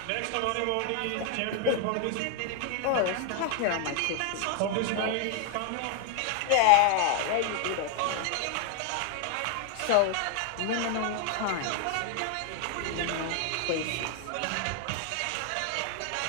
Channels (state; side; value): different; both; correlation 0.00